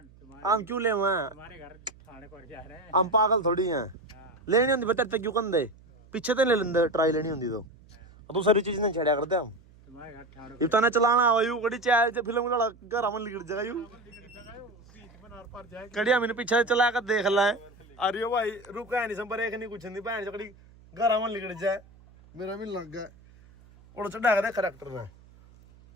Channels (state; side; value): noise; right; hum, 25 dB below the sound